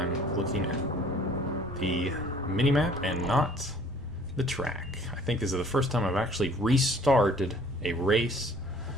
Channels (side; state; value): right; noise; rumble, 15 dB below the sound